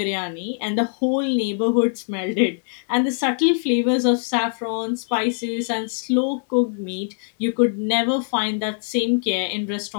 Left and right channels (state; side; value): silent; right; digital silence